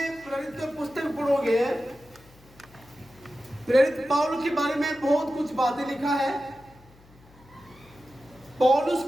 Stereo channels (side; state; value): left; noise; hum, 26 dB below the sound